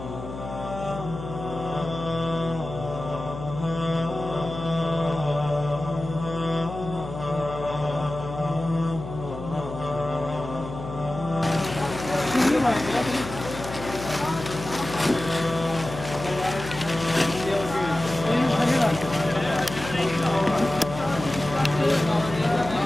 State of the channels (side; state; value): left; noise; hum, 10 dB below the sound